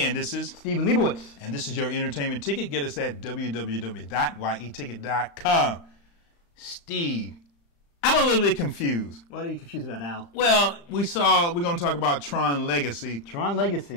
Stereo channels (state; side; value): late; right; 35 ms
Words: this is Stephen Leibowitz. And this is your entertainment ticket. Get us at www.yeticket.com. Steve, I'm a little bit confused. What are you confused about, Al? Well, we're going to talk about Tron Legacy. Tron